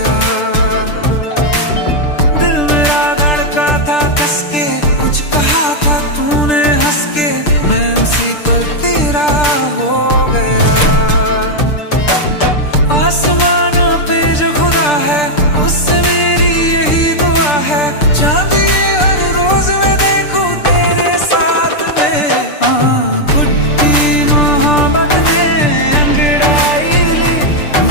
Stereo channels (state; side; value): late; right; 6.8 ms